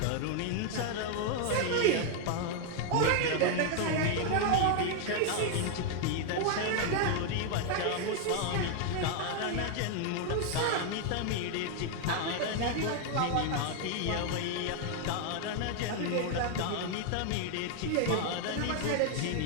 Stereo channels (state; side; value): different; both; correlation 0.00